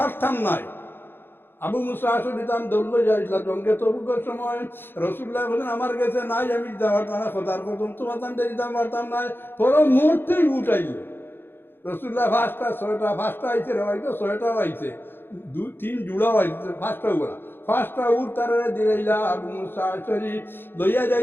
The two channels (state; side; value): late; right; 0.10 ms